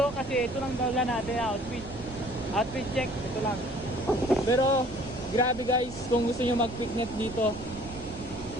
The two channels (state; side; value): noise; right; rumble, 13 dB below the sound